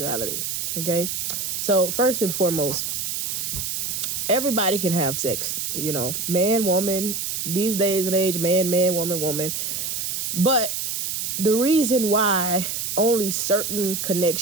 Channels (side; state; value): right; noise; hiss, 2 dB below the sound